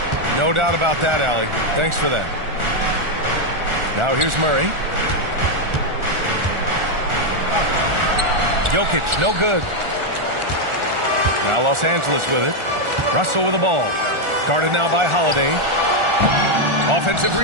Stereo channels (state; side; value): late; left; 1.4 ms